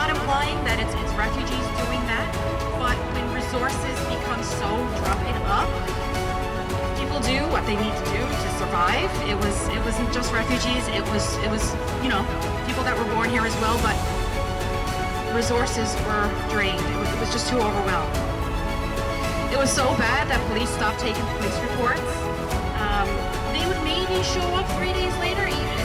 implying that it's refugees doing that, but when resources become so dried up, people do what they need to do to survive. It wasn't just refugees. It was people that were born here as well, but resources were drained. It was just too overwhelmed. It was so bad that police stopped taking police reports. They would maybe show up 3 days later,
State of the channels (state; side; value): identical; both; correlation 1.00